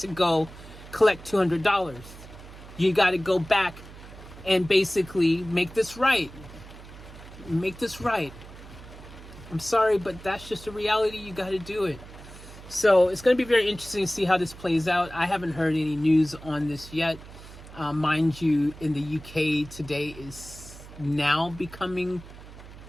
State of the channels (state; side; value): noise; right; hum, 17 dB below the sound